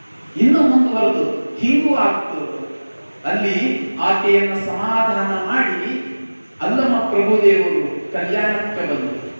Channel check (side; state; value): both; inverted; correlation -1.00